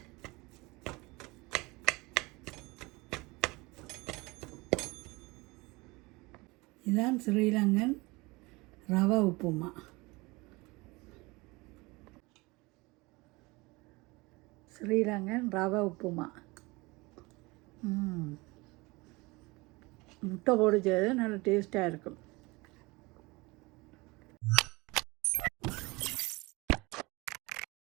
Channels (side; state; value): left; quieter; 24.0 dB